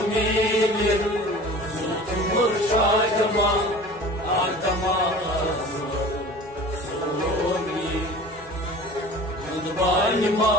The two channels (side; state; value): right; noise; hum, 26 dB below the sound